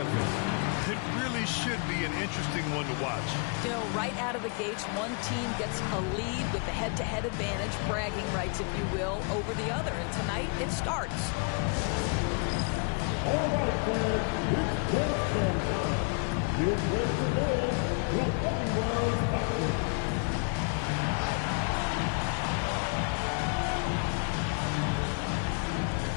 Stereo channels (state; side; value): quieter; right; 36.7 dB